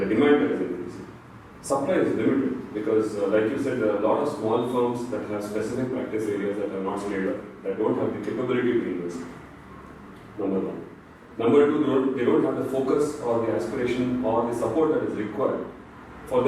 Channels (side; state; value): both; identical; correlation 1.00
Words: demand that is increasing. Supply is limited because, like you said, there are a lot of small firms that have specific practice areas that are not scaled up, that don't have the capability to invest. Number one. Number two, they don't have the focus or the aspiration or the support that is required for